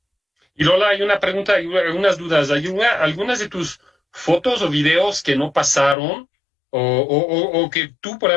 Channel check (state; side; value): drops out; right; at 6.0 s